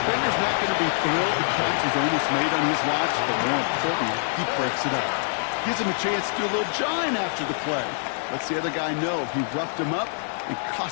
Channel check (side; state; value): right; silent; 57 dB below the other